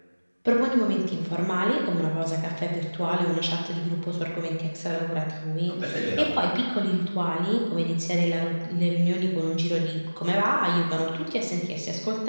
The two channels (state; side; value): inverted; both; correlation -1.00